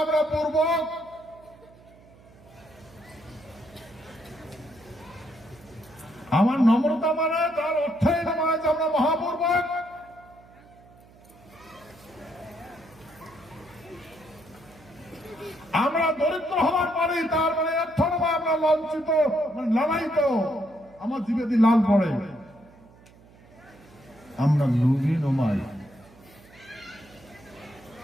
আমরা পূর্বক, আমার নম্রতা মানে তার অর্থই নয় যে আমরা মহাপূর্বক। আমরা দরিদ্র হওয়ার পরে তার মানে অর্থ নয় আমরা লাঞ্ছিত, মানে লালায়িত, আমার জীবে দিয়ে লাল পড়ে। আমরা লুবি নমাই।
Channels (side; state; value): right; noise; hum, 25 dB below the sound